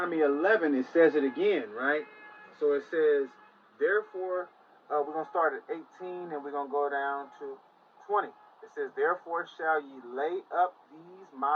11, it says it again, right? So it says, therefore, we're going to start at 18 and we're going to go down to 20. It says, therefore shall ye lay up these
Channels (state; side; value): identical; both; correlation 1.00